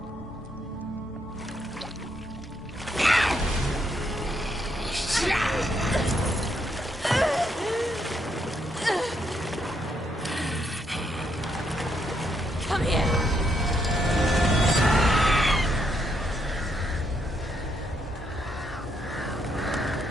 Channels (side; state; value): both; normal; correlation 0.76